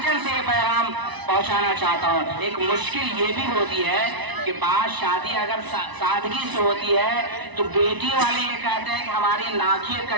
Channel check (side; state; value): left; late; 1.0 ms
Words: سے یہ پیغام پہنچانا چاہتا ہوں. ایک مشکل یہ بھی ہوتی ہے کہ بعض شادی اگر سادگی سے ہوتی ہے تو بیٹی والے یہ کہتے ہیں کہ ہماری ناکیں